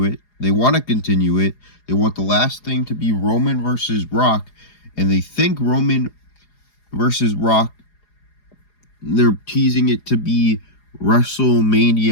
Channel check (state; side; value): late; right; 4.8 ms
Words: it. They want to continue it. They want the last thing to be Roman versus Rock. And they think Roman versus Rock, they're teasing it to be